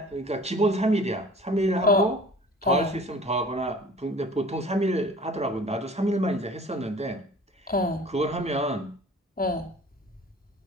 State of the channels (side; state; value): both; normal; correlation 0.46